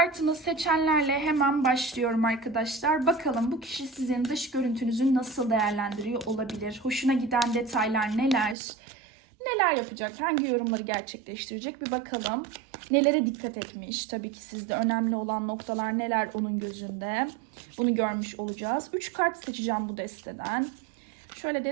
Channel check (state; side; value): drops out; left; at 8.6 s